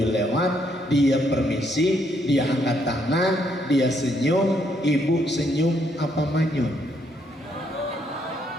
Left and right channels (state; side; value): normal; both; correlation 0.73